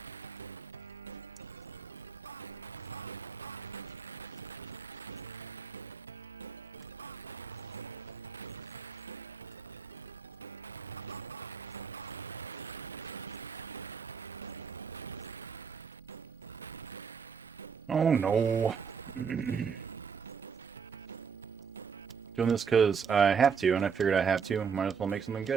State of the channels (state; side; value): quieter; left; 6.4 dB